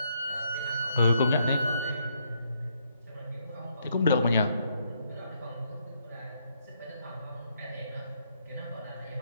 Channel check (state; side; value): inverted; both; correlation -0.74